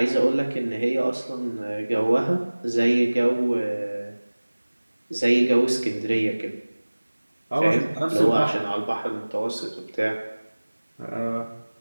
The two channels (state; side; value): inverted; both; correlation -1.00